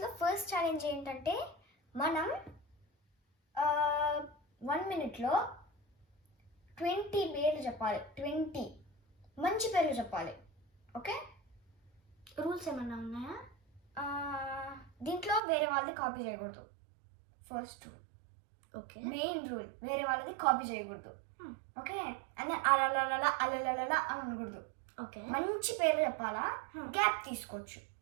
ఫస్ట్ ఛాలెంజ్ ఏంటంటే మనం 1 minuteలో 20 పేర్లు చెప్పాలి. 20 మంచి పేర్లు చెప్పాలి. ఓకే, రూల్స్ ఏమన్నా ఉన్నాయా? దీంట్లో వేరే వాళ్ళది కాపీ చేయకూడదు. First rule, okay. Main rule, వేరే వాళ్ళది కాపీ చేయకూడదు. ఓకే, అండ్ అలలల అలలల అని అనకూడదు. ఓకే, మంచి పేర్లు చెప్పాలా. గ్యాప్ తీసుకోవచ్చు.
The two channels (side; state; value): left; drops out; at 15.4 s